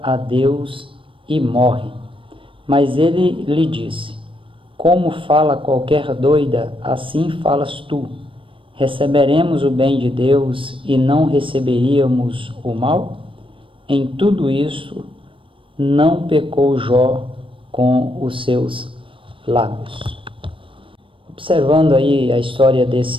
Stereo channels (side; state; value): left; late; 0.25 ms